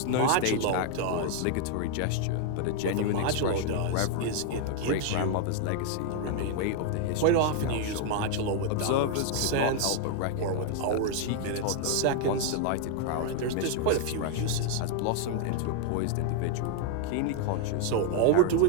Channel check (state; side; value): different; both; correlation 0.00